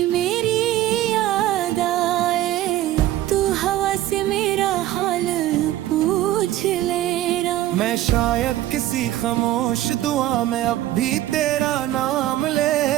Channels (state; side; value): quieter; left; 14.1 dB